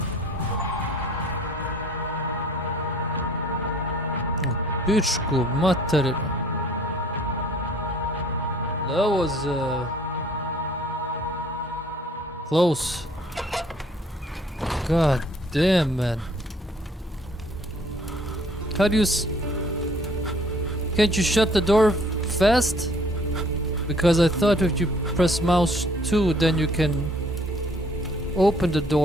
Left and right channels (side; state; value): both; normal; correlation 0.57